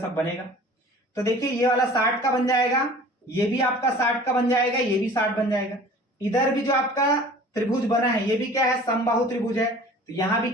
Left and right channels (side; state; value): both; normal; correlation 0.45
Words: बनेगा। तो देखिए ये वाला 60 का बन जाएगा, ये भी आपका 60 का बन जाएगा, ये भी 60 बन जाएगा। इधर भी जो आपका त्रिभुज बना है ये भी क्या है, समबाहु त्रिभुज है। तो यहां भी